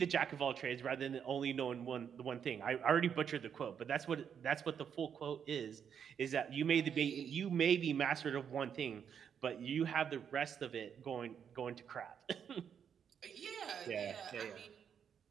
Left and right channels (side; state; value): left; quieter; 7.8 dB